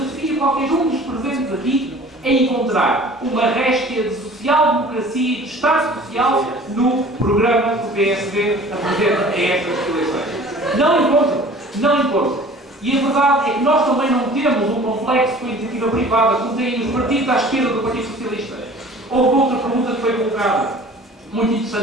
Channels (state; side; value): normal; both; correlation 0.47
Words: qualquer um dos presentes aqui a encontrar uma réstia de social-democracia e de Estado Social no programa que o PSD apresenta a estas eleições. Não encontro. E a verdade é que nós também não temos um complexo com a iniciativa privada, como têm os partidos à esquerda do Partido Socialista. Houve outra pergunta que foi colocada, muito